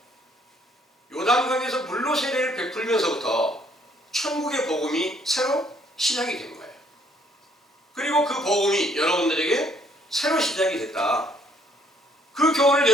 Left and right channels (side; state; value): both; normal; correlation 0.65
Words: 요단강에서 물로 세례를 베풀면서부터 천국의 복음이 새로 시작이 된 거예요. 그리고 그 복음이 여러분들에게 새로 시작이 됐다. 그 교훈을